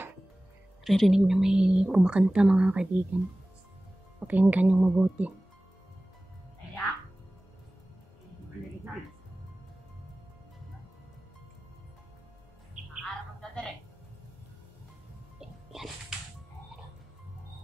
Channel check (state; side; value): normal; both; correlation 0.97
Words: ririnig na may kumakanta mga kaibigan. Pakinggan yung mabuti. Yan.